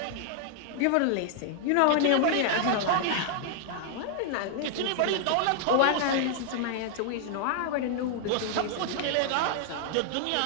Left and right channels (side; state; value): both; different; correlation -0.01